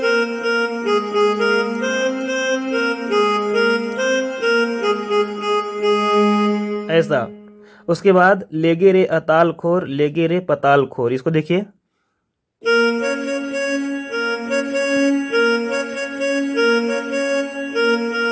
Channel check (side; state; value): both; identical; correlation 1.00